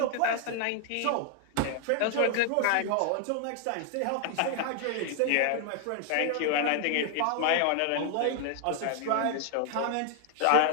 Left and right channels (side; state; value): both; different; correlation 0.00